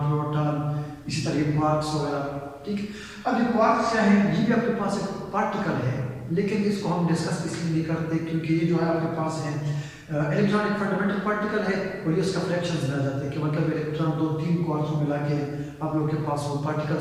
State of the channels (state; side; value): identical; both; correlation 1.00